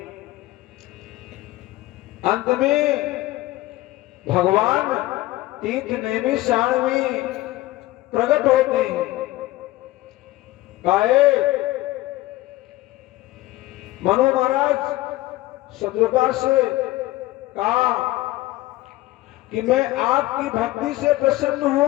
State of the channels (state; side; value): quieter; right; 17.6 dB